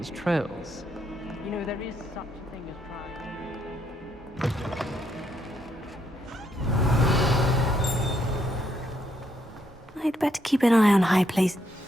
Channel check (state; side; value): normal; both; correlation 0.74